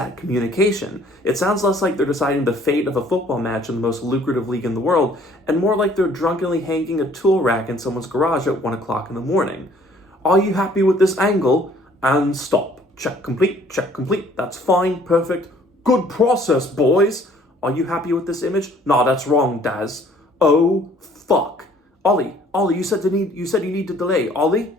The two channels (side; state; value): both; normal; correlation 0.58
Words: communication? It sounds less like they're deciding the fate of a football match in the most lucrative league in the world, and more like they're drunkenly hanging a tool rack in someone's garage at 1 o'clock in the morning. Are you happy with this angle? And stop. Check complete. That's fine, perfect. Good process, boys. Are you happy with this image? Nah, that's wrong, Daz. Oh, fuck. Ollie, you said you need to delay. Ollie?